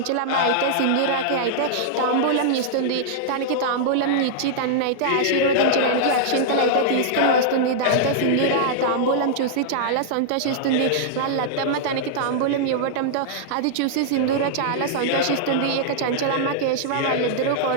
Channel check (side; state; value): both; different; correlation -0.01